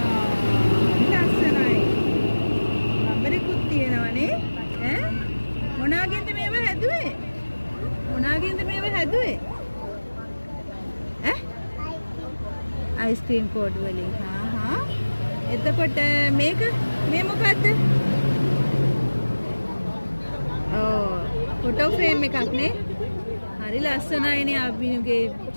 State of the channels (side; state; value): both; inverted; correlation -1.00